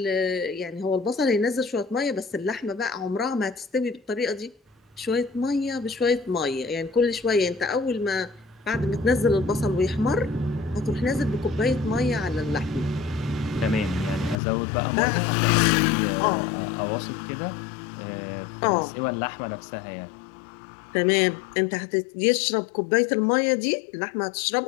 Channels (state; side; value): drops out; right; at 14.4 s